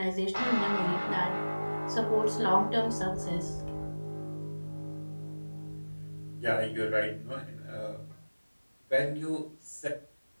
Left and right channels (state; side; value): inverted; both; correlation -1.00